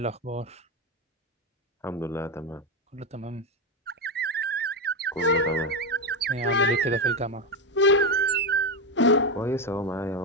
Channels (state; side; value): normal; both; correlation 0.11